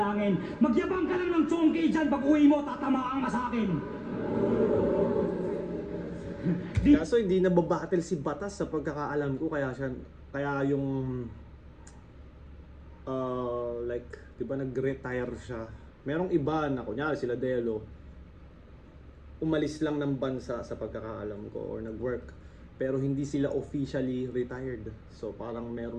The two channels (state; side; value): identical; both; correlation 1.00